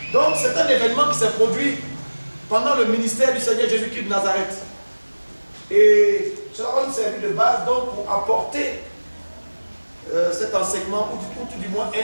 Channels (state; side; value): inverted; both; correlation -1.00